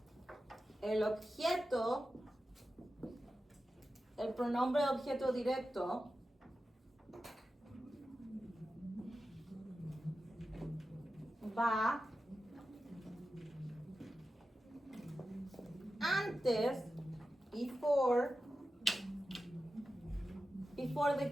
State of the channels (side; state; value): both; normal; correlation 0.92